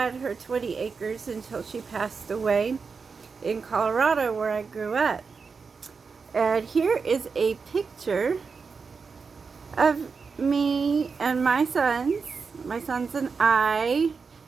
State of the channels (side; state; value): left; quieter; 5.1 dB